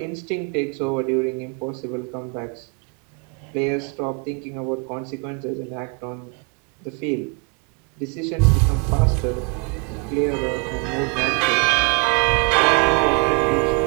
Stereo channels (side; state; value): left; quieter; 30.6 dB